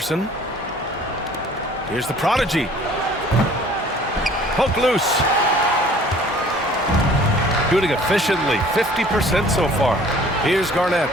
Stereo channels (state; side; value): normal; both; correlation 0.52